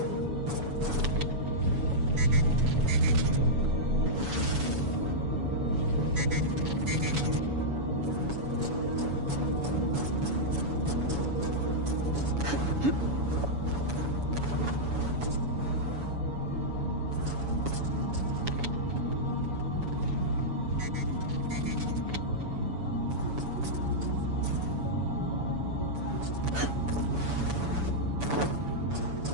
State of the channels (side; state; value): left; late; 7.0 ms